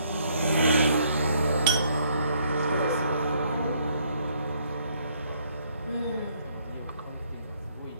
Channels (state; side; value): inverted; both; correlation -0.67